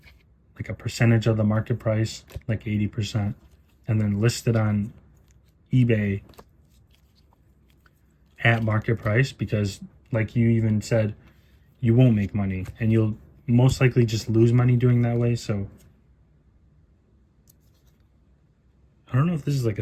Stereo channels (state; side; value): identical; both; correlation 1.00